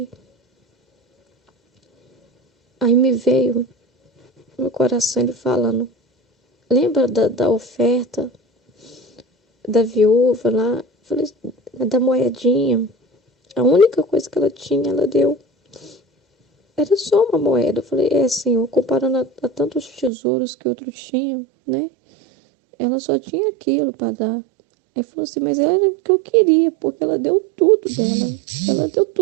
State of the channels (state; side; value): drops out; left; at 20.1 s